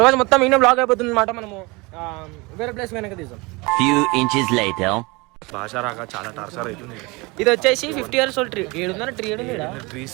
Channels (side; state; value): left; quieter; 25.5 dB